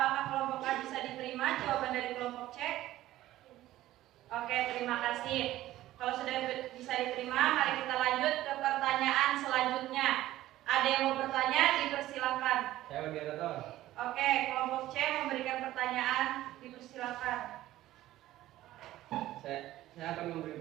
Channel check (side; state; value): left; quieter; 15.0 dB